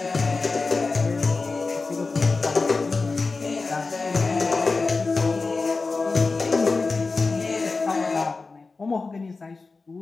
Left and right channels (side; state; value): right; quieter; 4.0 dB